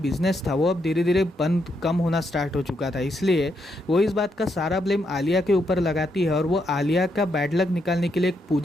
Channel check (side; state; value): both; normal; correlation 0.79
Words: बिजनेस था वो अब धीरे धीरे कम होना स्टार्ट हो चुका था। इसलिए वो इस बात का सारा ब्लेम आलिया के ऊपर लगाती है और वो आलिया का बैड लक निकालने के लिए एक